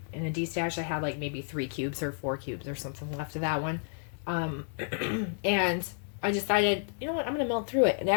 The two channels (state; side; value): silent; right; 57 dB below the other